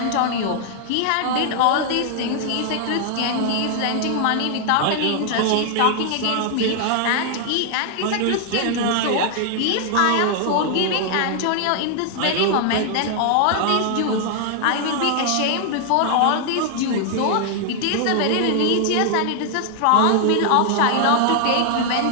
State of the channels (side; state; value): both; different; correlation 0.00